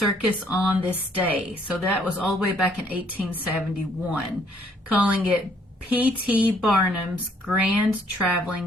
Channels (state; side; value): normal; both; correlation 0.65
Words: on this day. So that was all the way back in 1871, calling it P.T. Barnum's Grand Traveling